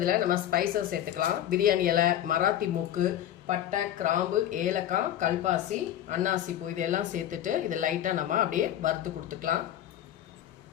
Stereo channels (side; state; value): right; quieter; 11.6 dB